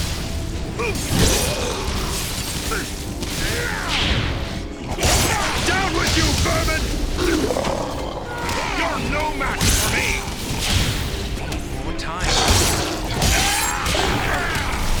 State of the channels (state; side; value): identical; both; correlation 1.00